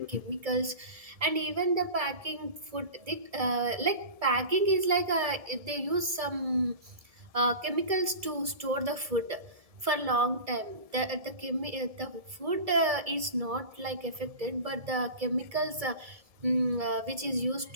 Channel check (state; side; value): late; left; 1.7 ms